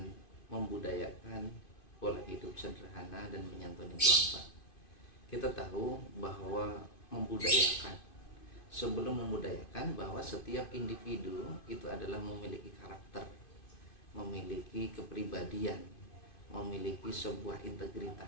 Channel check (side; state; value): right; late; 2.5 ms